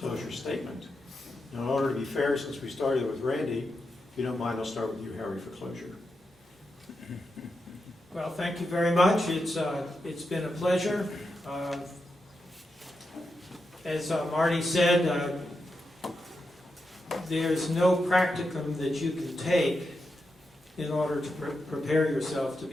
statement. Now, in order to be fair, since we started with Randy, if you don't mind, I'll start with you, Harry, for closure. Well, thank you very much. It's been a pleasure. As Marty said, there's no practicum that you can take in order to prepare yourself to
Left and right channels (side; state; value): both; normal; correlation 0.87